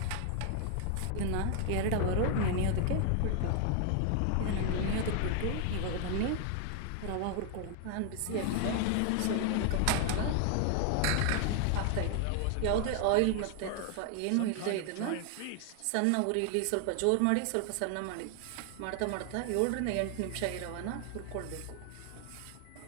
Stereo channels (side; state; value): both; different; correlation 0.00